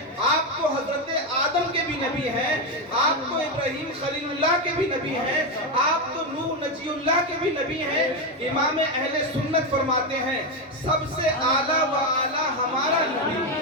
آپ تو حضرت آدم کے بھی نبی ہیں، آپ تو ابراہیم خلیل اللہ کے بھی نبی ہیں، آپ تو نوح نجی اللہ کے بھی نبی ہیں۔ امام اہل سنت فرماتے ہیں سب سے اعلیٰ و اعلیٰ ہمارا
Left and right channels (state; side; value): normal; both; correlation 0.09